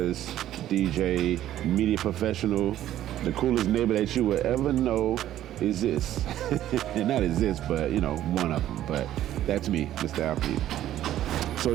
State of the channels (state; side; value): quieter; left; 12.6 dB